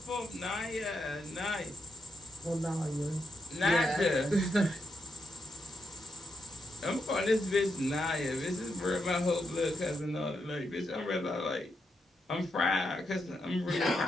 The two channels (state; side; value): normal; both; correlation 0.82